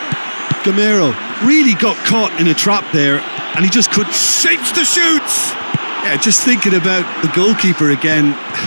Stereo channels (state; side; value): inverted; both; correlation -1.00